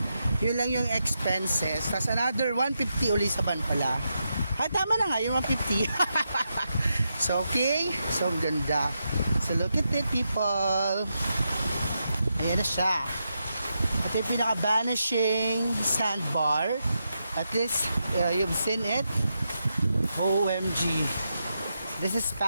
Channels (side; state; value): both; inverted; correlation -0.85